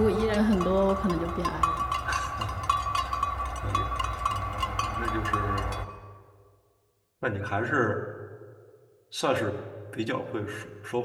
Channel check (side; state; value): both; identical; correlation 1.00